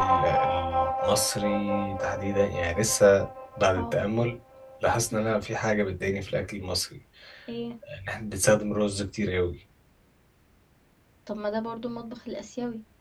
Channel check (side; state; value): both; identical; correlation 1.00